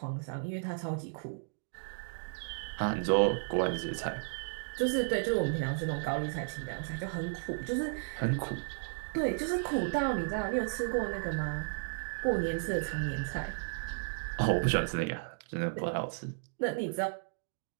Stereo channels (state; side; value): silent; left; digital silence